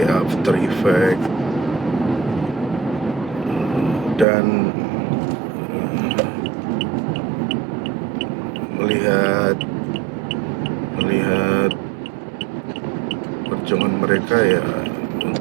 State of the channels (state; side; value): drops out; left; at 4.2 s